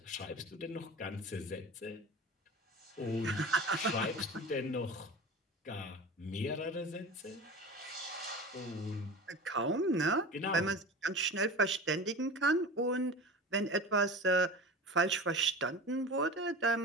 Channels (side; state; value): both; normal; correlation 0.33